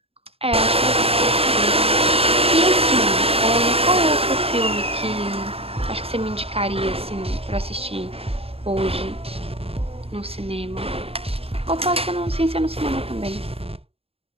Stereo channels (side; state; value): left; late; 0.28 ms